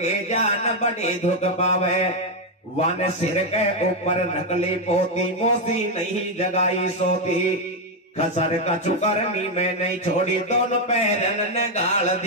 जान बड़ी धुक पावे। वन सिर के ऊपर नकली पोती मोसी नहीं जगाई सोती। खसर का चुकरनी में नहीं छोड़ी दोनों पैरन ने गाल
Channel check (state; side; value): normal; both; correlation 0.04